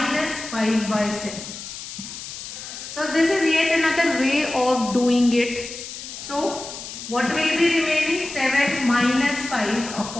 5 by 7. So this is yet another way of doing it. So what will be remaining? 7 minus 5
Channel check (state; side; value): noise; left; hiss, 10 dB below the sound